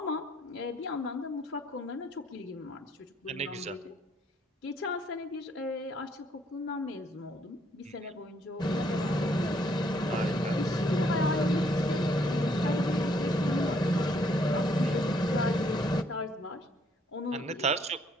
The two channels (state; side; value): normal; both; correlation 0.68